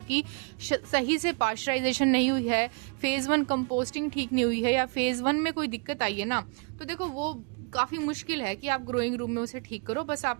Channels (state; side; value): quieter; left; 36.3 dB